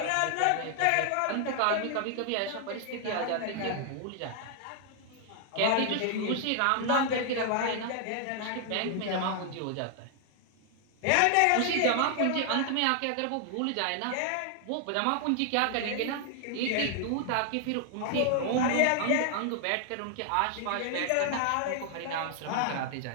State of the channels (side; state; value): both; different; correlation 0.00